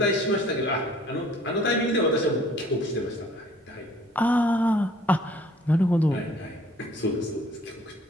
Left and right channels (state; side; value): normal; both; correlation 0.55